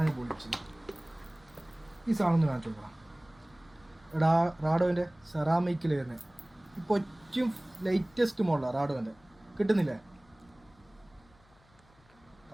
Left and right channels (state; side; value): noise; left; hum, 30 dB below the sound